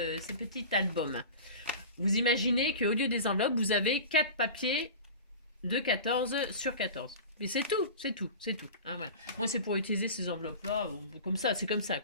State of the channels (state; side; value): inverted; both; correlation -0.34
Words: album. Vous imaginez qu'au lieu des enveloppes, vous avez 4 papiers de 14 sur 14. Mais c'est tout. Hein, voilà. Moi, c'est pour utiliser ces enveloppes-là, comme ça, c'est comme ça,